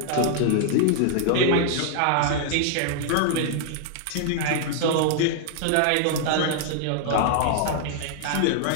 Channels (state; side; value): different; both; correlation -0.01